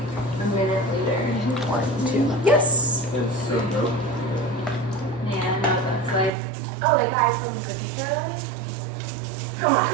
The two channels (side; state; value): left; drops out; at 6.3 s